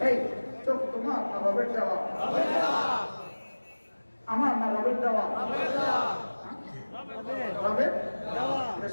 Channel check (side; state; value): both; inverted; correlation -1.00